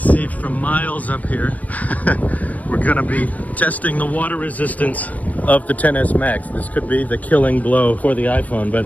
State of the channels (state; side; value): late; right; 0.072 ms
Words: from miles up here, we're gonna be testing the water resistance of the XS Max. This could be the killing blow for the iPhone, but